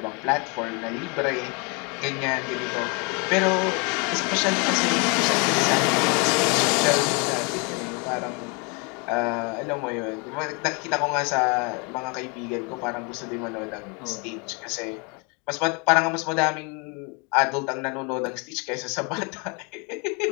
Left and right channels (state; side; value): quieter; right; 32.5 dB